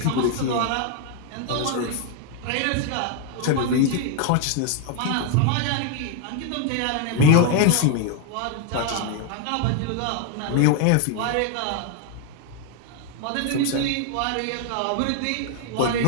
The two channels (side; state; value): both; different; correlation 0.01